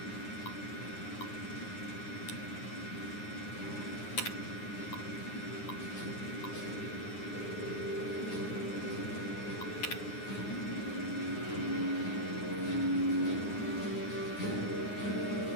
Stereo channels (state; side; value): late; right; 9.7 ms